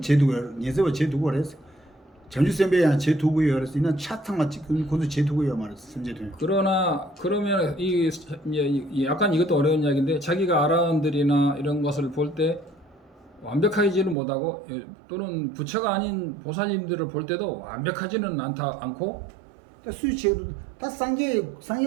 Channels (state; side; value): drops out; left; at 14.2 s